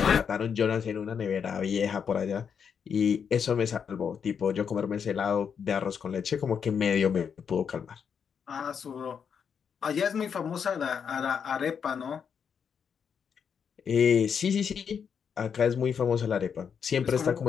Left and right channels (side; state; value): right; quieter; 7.0 dB